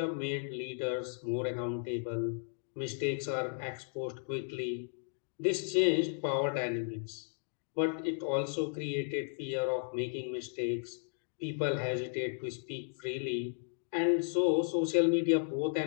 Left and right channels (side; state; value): right; silent; digital silence